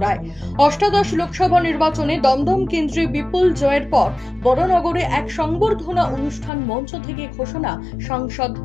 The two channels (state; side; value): drops out; right; at 6.5 s